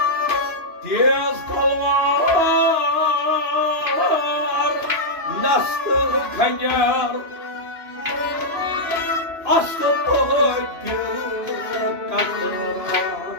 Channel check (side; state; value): left; late; 2.9 ms